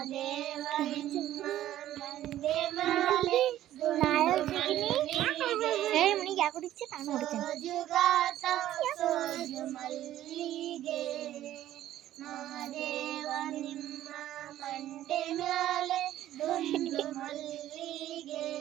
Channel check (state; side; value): quieter; left; 13.0 dB